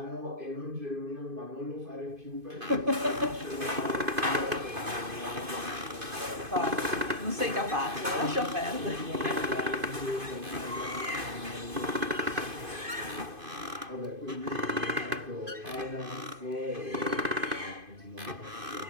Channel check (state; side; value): late; left; 2.5 ms